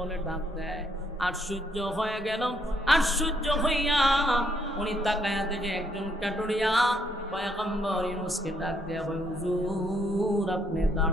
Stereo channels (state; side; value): normal; both; correlation 0.71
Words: ডাক দেয়। আশ্চর্য হয়ে গেল, আশ্চর্য হইয়া উনি তাকায়া দেখে একজন কাটুরিয়া পয়গম্বর ইউনূসকে ডাক দেয়া, হুজুর আপনি